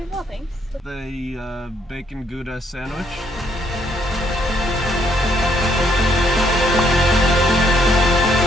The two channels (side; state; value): both; normal; correlation 0.71